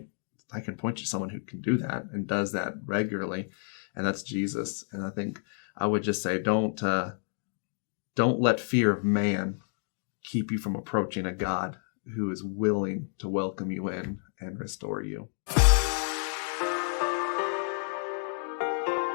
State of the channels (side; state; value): right; silent; 58 dB below the other